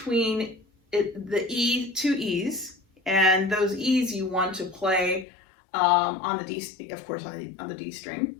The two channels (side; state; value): right; drops out; at 5.2 s